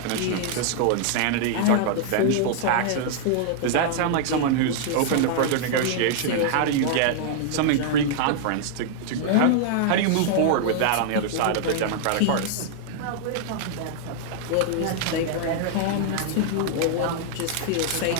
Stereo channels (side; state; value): both; different; correlation 0.00